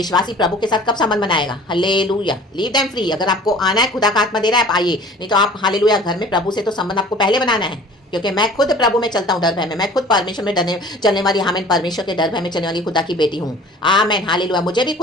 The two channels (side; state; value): both; normal; correlation 0.47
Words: प्रभु के साथ कब संबंध बनाएगा? हालेलुया। Leave them free. अगर आपको आना है, खुदा का आत्मा दे रहा है, आप आइए, नहीं तो आप हालेलुया घर में प्रभु से तो संबंध आपको पहले बनाना है। क्योंकि मैं खुद प्रभु में चलता हूँ डर भय में, मैं खुद परमेश्वर में डरने चलने वाली, आमीन, परमेश्वर के डर भय में चलने वाली खुदा की बेटी हूँ। आमीन, हालेलुया। मुझे भी